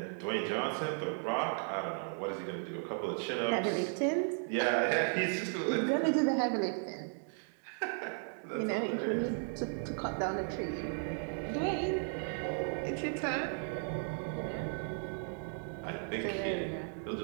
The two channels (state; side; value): silent; left; 54 dB below the other